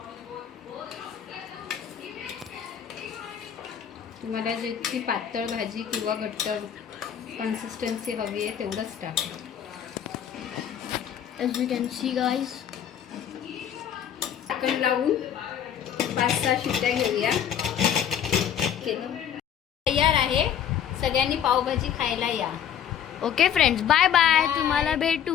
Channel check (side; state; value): right; quieter; 9.3 dB